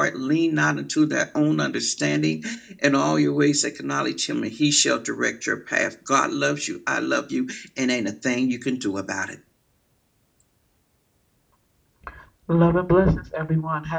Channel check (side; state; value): both; identical; correlation 1.00